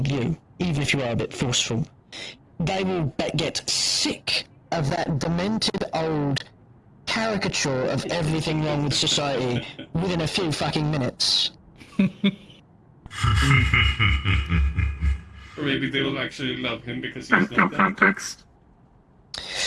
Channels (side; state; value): both; identical; correlation 1.00